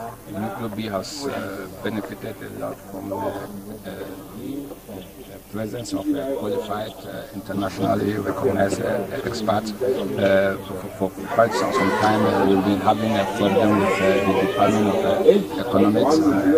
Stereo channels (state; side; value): identical; both; correlation 1.00